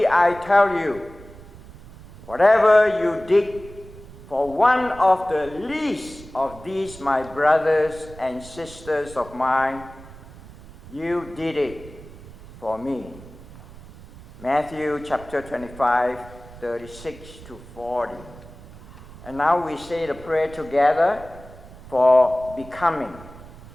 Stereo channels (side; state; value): right; noise; rumble, 18 dB below the sound